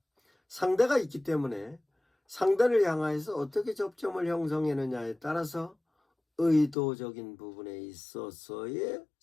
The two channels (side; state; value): right; drops out; at 6.8 s